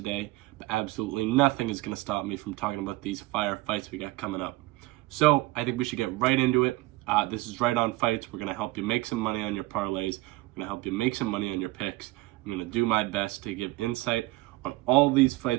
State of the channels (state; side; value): quieter; left; 19.9 dB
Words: but absolutely nothing is going to stop me from talking about these fire fights we got coming up. So I think we should get right into it. This is Right On Fights. We're going to help you make some money on your parlays. We're going to help you make some money on your picks. I'm going to do my best to give insight on all these